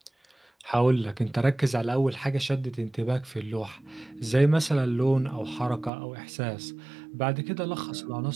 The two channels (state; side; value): drops out; left; at 5.9 s